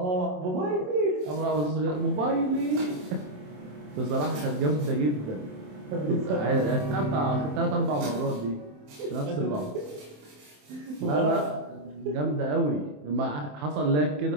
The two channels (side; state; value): left; late; 27 ms